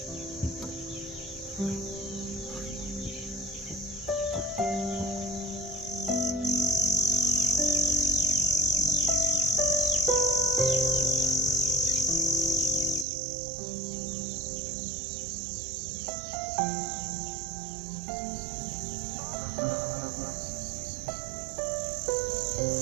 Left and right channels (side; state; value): left; drops out; at 13.1 s